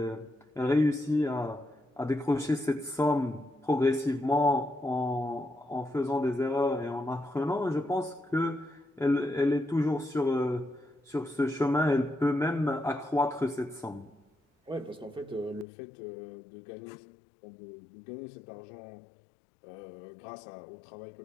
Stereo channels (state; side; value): drops out; right; at 15.7 s